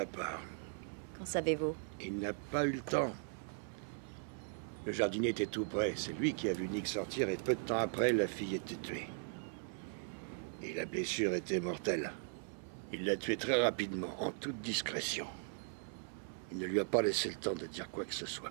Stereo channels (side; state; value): left; silent; 52 dB below the other